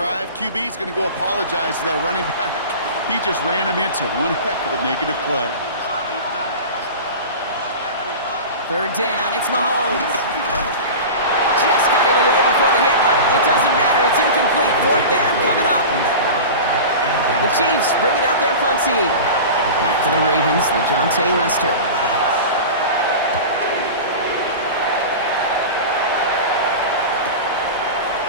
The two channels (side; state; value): both; inverted; correlation -0.31